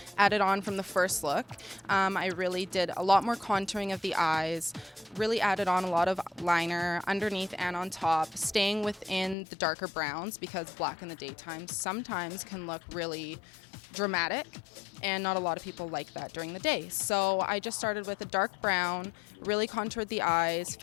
added on from the first look. I really did a lot more contouring of the eyes, really added on a lot of liner underneath and on top, staying within the darker browns, because black in the daytime sometimes can look really dramatic, and not a lot of people like that during the day. So I just started with a dark brown, really contoured the eyes,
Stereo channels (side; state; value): right; drops out; at 9.3 s